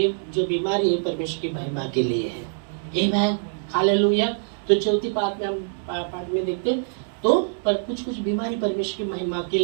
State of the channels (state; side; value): silent; left; digital silence